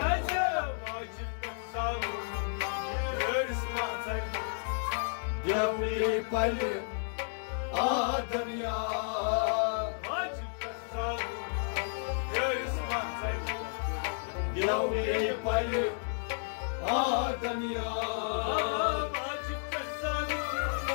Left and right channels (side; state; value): right; silent; digital silence